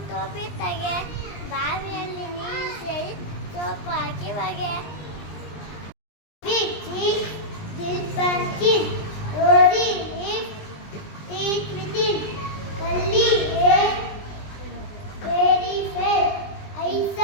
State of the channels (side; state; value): right; late; 20 ms